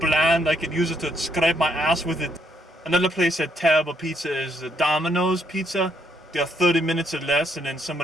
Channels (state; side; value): normal; both; correlation 0.73